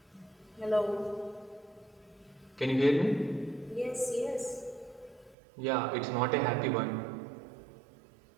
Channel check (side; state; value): left; drops out; at 5.4 s